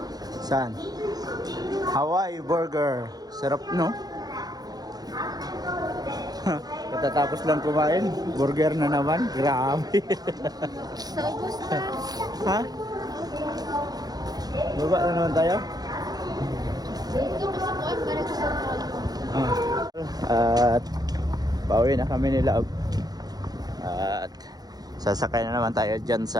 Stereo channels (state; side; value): late; left; 0.19 ms